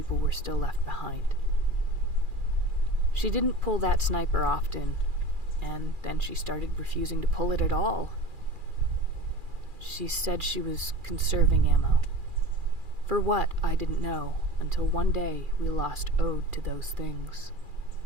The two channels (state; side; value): late; left; 2.4 ms